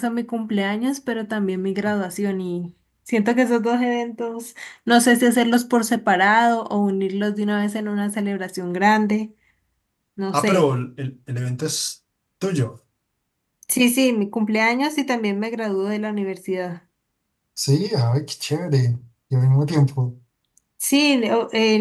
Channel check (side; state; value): both; identical; correlation 1.00